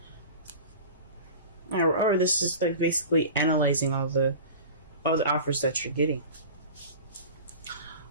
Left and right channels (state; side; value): inverted; both; correlation -0.36